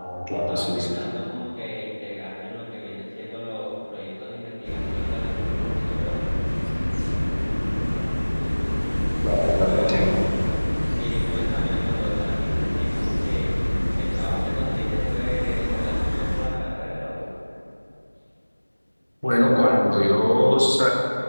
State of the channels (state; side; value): inverted; both; correlation -1.00